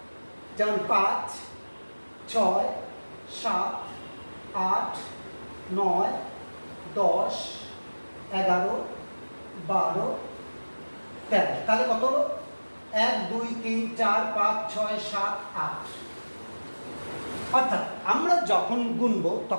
যেমন 5, 6, 7, 8, 9, 10, 11, 12, 13। তাহলে কত হলো? 1, 2, 3, 4, 5, 6, 7, 8। অর্থাৎ আমরা যখন গুনবো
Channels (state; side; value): inverted; both; correlation -1.00